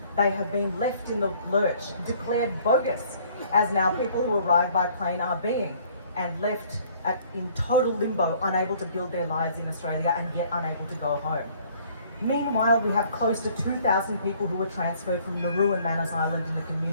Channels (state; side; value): inverted; both; correlation -0.58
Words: they have been left in the lurch, declared bogus, as now people who arrive by plane are being, and left in total limbo, unable to build their lives in Australia and yet unable to go home. Meanwhile, we have close to 2,000 people who were transferred from Nauru and Manus Island in the